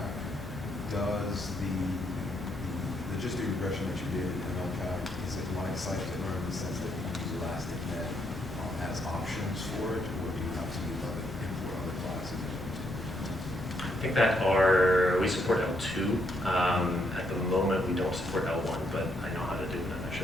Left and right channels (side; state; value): both; normal; correlation 0.75